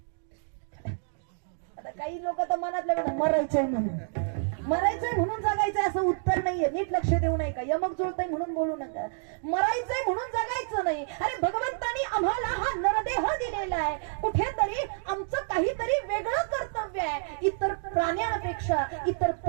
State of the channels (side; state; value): left; silent; digital silence